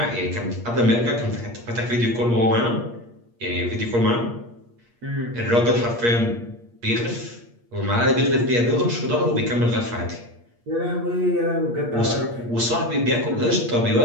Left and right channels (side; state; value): left; late; 8.5 ms